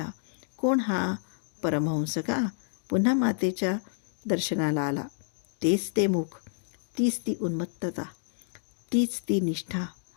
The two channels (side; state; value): right; silent; digital silence